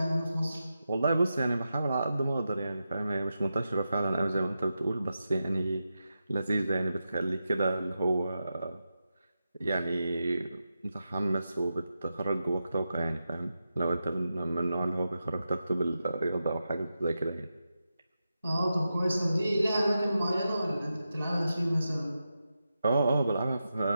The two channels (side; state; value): both; inverted; correlation -0.90